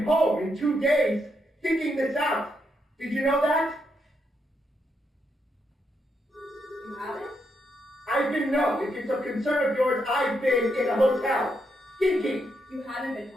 home in 2 days thinking this out. Did you know that? You haven't? If it's a concern of yours, I've been in a hotel, thinking. You haven't been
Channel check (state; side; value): normal; both; correlation 0.80